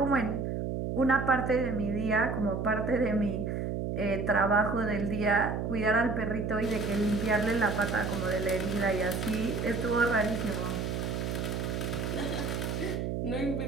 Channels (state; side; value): noise; right; hum, 2 dB below the sound